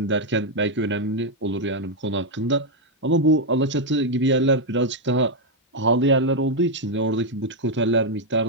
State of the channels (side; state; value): both; normal; correlation 0.01